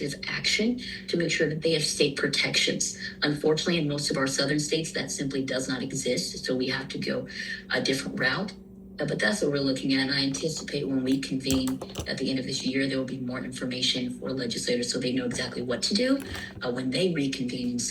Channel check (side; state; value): both; identical; correlation 1.00